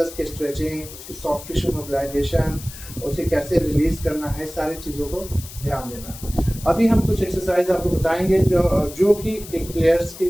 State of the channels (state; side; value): noise; left; hiss, 15 dB below the sound